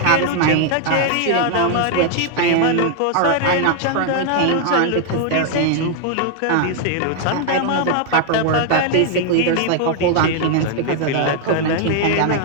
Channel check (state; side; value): different; both; correlation 0.00